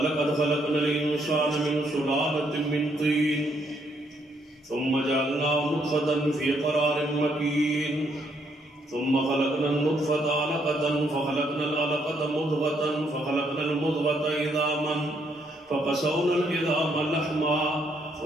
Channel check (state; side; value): normal; both; correlation 0.72